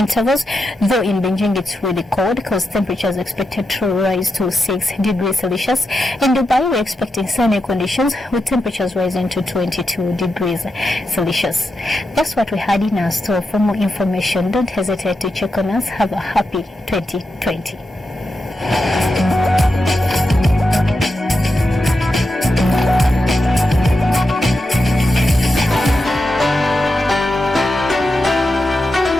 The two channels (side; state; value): both; normal; correlation 0.88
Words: though in Beijing it's really cold because temperatures are expected to rise to 6 degrees Celsius. In Dubai, we're expecting sunny conditions with temperatures rising to 22 degrees Celsius. That's what we had in our store. For more information, don't hesitate to check on us. Have a happy 2020.